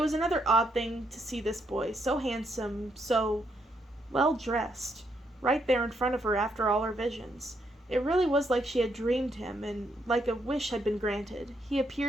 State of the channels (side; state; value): both; normal; correlation 0.76